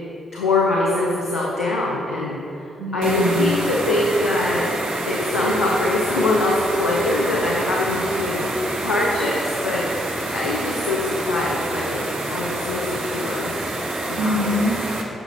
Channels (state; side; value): normal; both; correlation 0.67